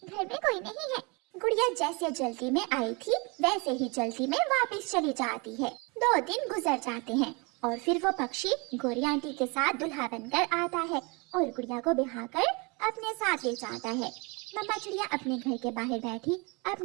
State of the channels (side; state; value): left; quieter; 29.5 dB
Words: घर में कोई नहीं है। गुड़िया जैसे जल्दी में आई थी वैसे ही जल्दी में वापस चली जाती है। 2 दिन गुजर जाते हैं और फिर वो पक्षी गोरी आंटी के साथ दुल्हा बनकर आता है और गुड़िया को बिहाकर अपने साथ ले जाता है। मम्मा चिड़िया अपने घर के बाहर बैठी